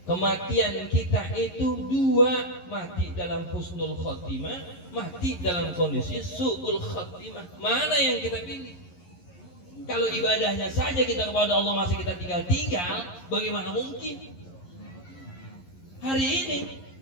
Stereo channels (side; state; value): right; late; 11 ms